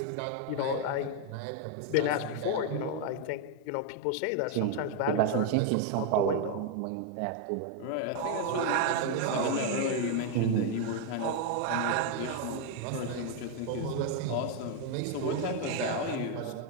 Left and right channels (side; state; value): both; different; correlation 0.00